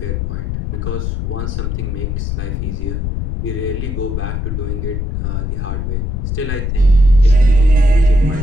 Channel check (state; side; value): noise; left; rumble, 3 dB below the sound